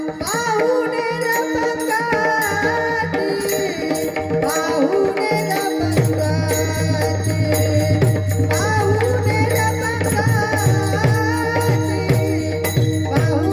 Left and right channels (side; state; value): both; identical; correlation 1.00